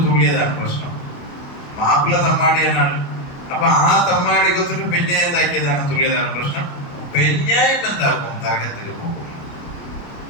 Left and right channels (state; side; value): late; right; 28 ms